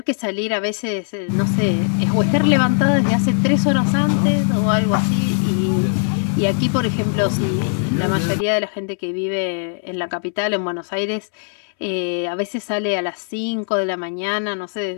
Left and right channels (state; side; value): silent; right; 66 dB below the other